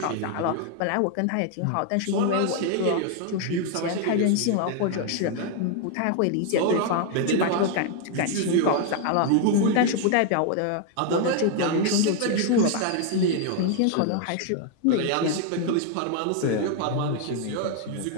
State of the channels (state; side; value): different; both; correlation 0.00